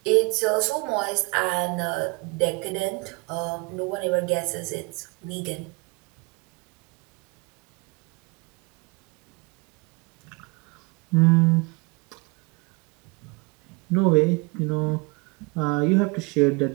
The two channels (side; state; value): left; quieter; 27.7 dB